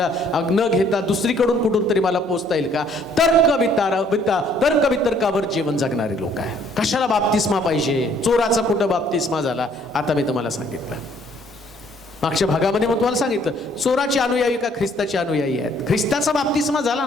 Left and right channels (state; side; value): normal; both; correlation 0.62